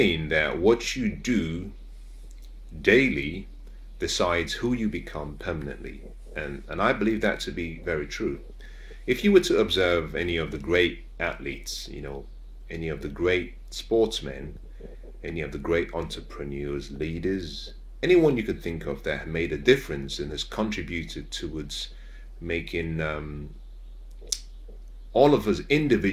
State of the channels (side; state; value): both; identical; correlation 1.00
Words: that what you do daily decides who you become permanently, and I believe that to be very true. If you were to observe any of the great athletes, any of the great sportsmen, any of the great entrepreneurs, leaders, anyone you could think of that have made a difference and has contributed towards making all of us